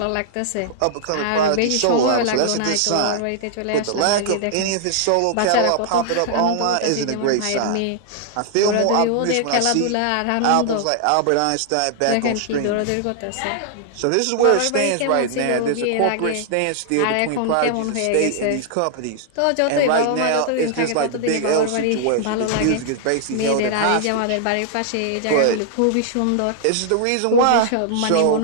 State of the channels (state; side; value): different; both; correlation -0.01